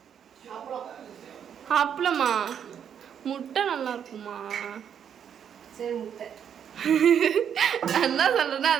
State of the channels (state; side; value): quieter; left; 8.4 dB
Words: அப்பளமா முட்டை நல்லா இருக்குமா? சரி முட்டை என்ன சொல்கிறேன்னா